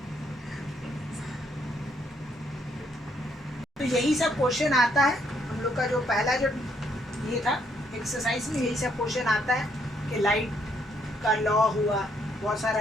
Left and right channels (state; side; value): normal; both; correlation 0.71